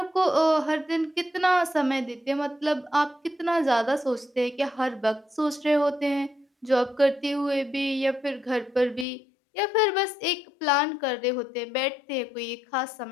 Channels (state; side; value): drops out; right; at 9.1 s